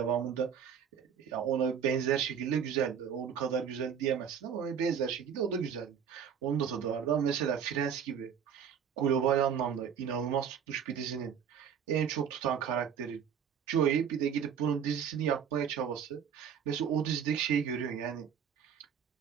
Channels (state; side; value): quieter; left; 7.9 dB